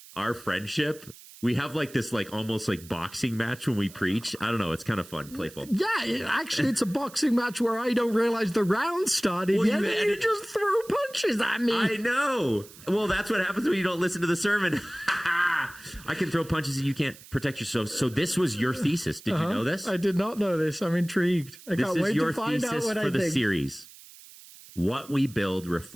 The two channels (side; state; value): right; noise; hiss, 20 dB below the sound